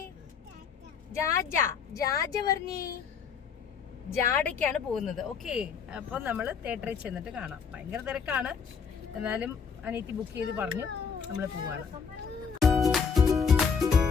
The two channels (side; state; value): right; quieter; 6.2 dB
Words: ജാജ പറഞ്ഞേ. ജാഡയ്ക്കാണ് പോകുന്നത്. ഓക്കെ, അപ്പൊ നമ്മള് തിയേറ്ററിൽ ചെന്നിട്ട് കാണാം. ഭയങ്കര തിരക്കാണ്, എന്നാലും അനിയത്തി ബുക്ക് ചെയ്ത് പറഞ്ഞു നമ്മള് പോവാണ്.